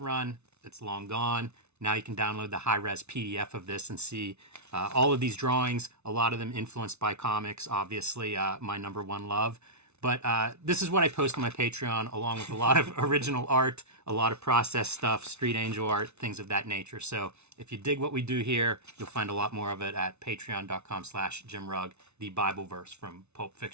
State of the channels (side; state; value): left; late; 0.81 ms